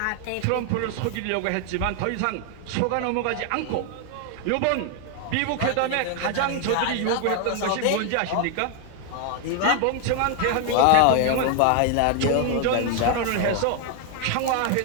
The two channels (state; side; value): different; both; correlation 0.00